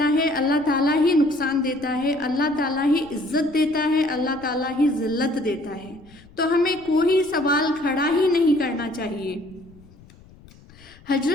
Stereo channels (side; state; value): left; noise; rumble, 24 dB below the sound